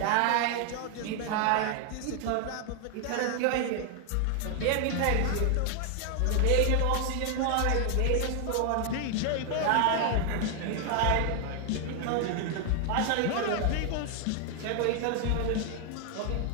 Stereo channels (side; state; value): both; different; correlation 0.00